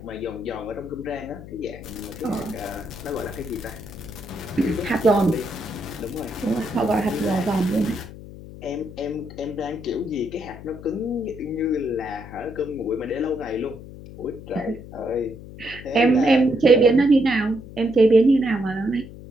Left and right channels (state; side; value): noise; left; hum, 15 dB below the sound